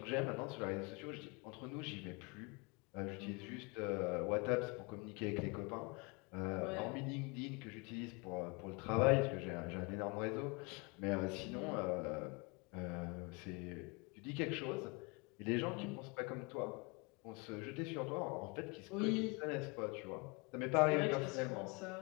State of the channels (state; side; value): quieter; right; 29.3 dB